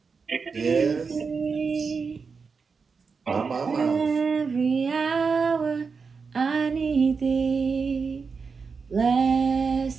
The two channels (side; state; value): left; quieter; 5.1 dB